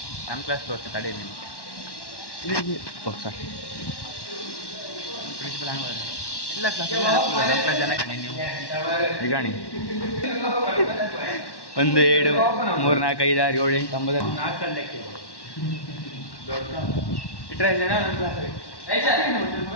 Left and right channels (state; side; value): late; right; 1.1 ms